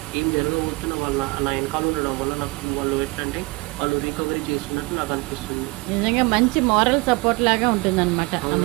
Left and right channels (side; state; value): left; quieter; 25.4 dB